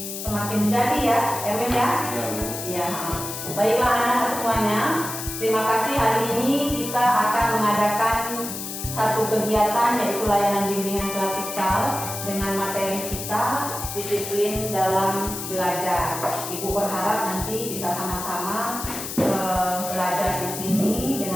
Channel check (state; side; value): noise; left; hiss, 7 dB below the sound